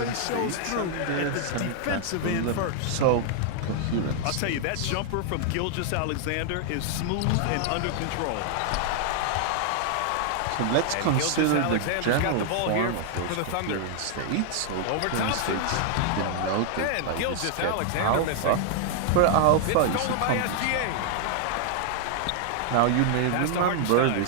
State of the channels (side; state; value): both; different; correlation 0.00